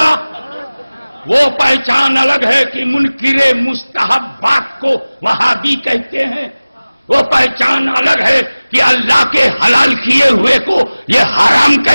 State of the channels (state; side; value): inverted; both; correlation -0.99